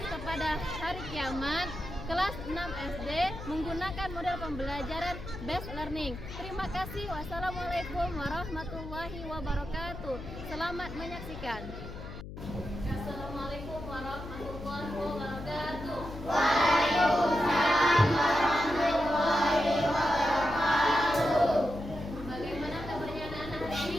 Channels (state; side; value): noise; left; hum, 11 dB below the sound